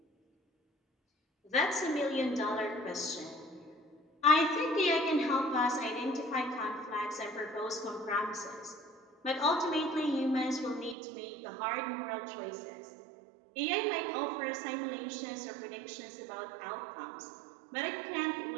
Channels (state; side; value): drops out; left; at 11.0 s